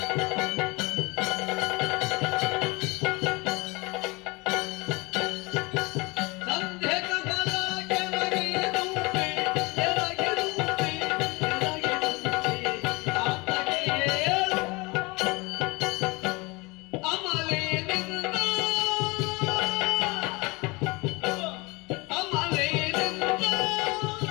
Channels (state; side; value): quieter; right; 25.2 dB